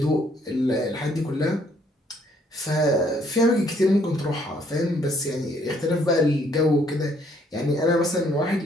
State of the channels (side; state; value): both; normal; correlation 0.66